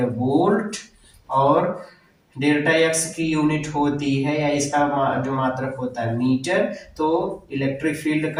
वोल्ट और डेल्टा एक्स की यूनिट होती है या इसका जो मात्रक होता है मीटर, तो इलेक्ट्रिक फील्ड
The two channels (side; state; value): both; identical; correlation 1.00